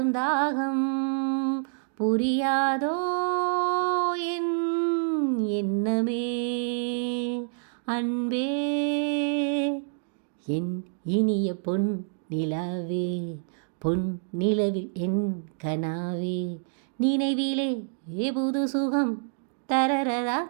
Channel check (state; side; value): silent; left; digital silence